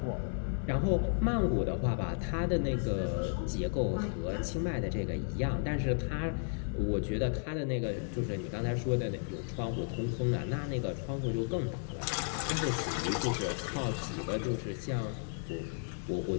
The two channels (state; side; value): silent; right; 55 dB below the other